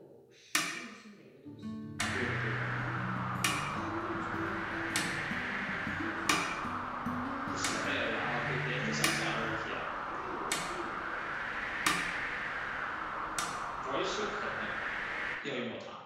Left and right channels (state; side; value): identical; both; correlation 1.00